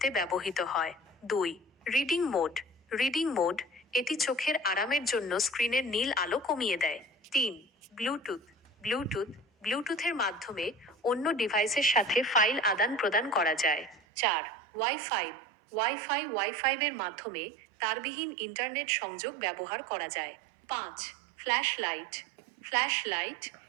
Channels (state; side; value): drops out; left; at 14.0 s